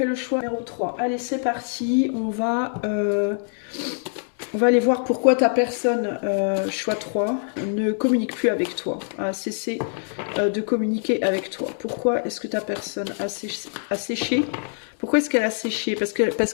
le choix numéro 3. Allez, c'est parti. On va aller voir pourquoi ta personne, choix 3, ne communique plus avec toi, a cessé de communiquer avec toi. Pourquoi est-ce que ta personne a séché? Pourquoi est-ce qu'elle a séché? Parce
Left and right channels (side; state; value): right; silent; 63 dB below the other